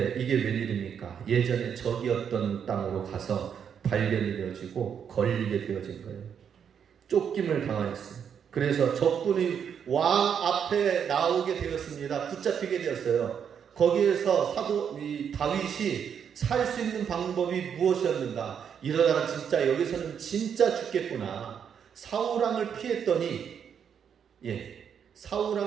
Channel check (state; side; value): quieter; left; 7.8 dB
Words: 이게 웬일입니까? 예전에 적이었던 땅으로 가서 발견이 되어지고 걸리게 되어진 거예요. 쫓김을 당하였어요. 그래서 적군이 왕 앞에 나오게 되었습니다. 붙잡히게 되었어요. 거기에서 다윗이 살 수 있는 방법이 무엇이었는가? 이러다가 진짜 여기서는 진짜 죽겠구나. 사울왕을